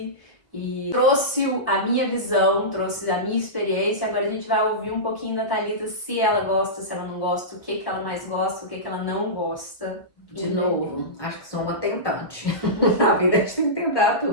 e trouxe a minha visão, trouxe a minha experiência. Agora a gente vai ouvir um pouquinho da Thalita, se ela gosta, se ela não gosta, o que ela mais gosta, o que ela não gosta. De novo, acho que sou uma tentante. Na vida a gente tem que tentar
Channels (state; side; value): late; right; 1.3 ms